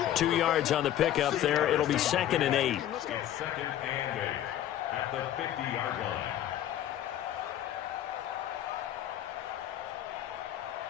2 yards on the pickup there. It'll be 2nd and 8. It's 2nd and 8 at the 50-yard line.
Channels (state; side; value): quieter; right; 11.8 dB